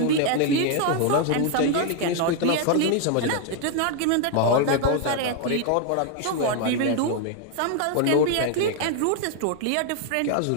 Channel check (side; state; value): both; different; correlation 0.00